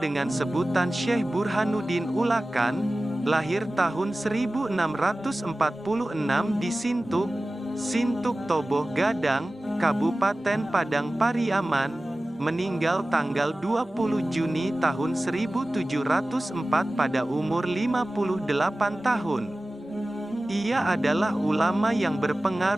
sebutan Syekh Burhanuddin Ulakan, lahir tahun 1646 di Sintuk Toboh Gadang, Kabupaten Padang Pariaman, meninggal tanggal 20 Juni tahun 1704 pada umur 58 tahun. Ia adalah ulama yang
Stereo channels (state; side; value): normal; both; correlation 0.96